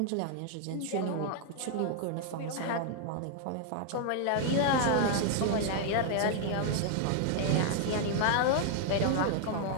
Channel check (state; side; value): different; both; correlation 0.00